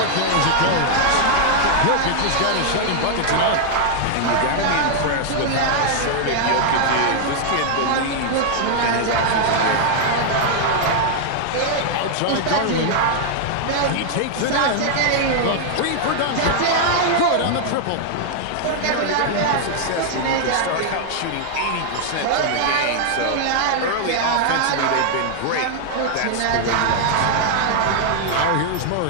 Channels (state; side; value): different; both; correlation 0.00